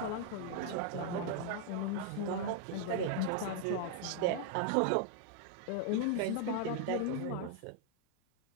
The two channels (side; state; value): both; different; correlation 0.00